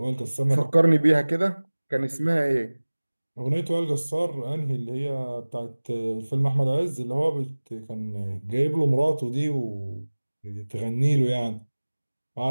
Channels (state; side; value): inverted; both; correlation -1.00